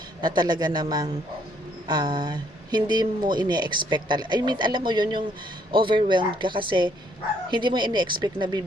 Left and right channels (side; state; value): both; normal; correlation 0.67